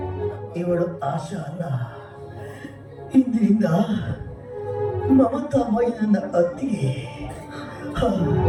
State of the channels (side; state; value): both; identical; correlation 1.00